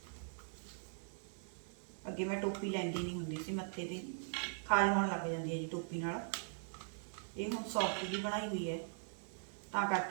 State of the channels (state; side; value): silent; left; digital silence